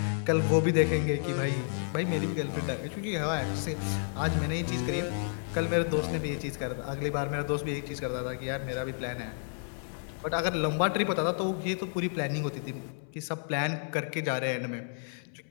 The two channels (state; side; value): silent; right; 57 dB below the other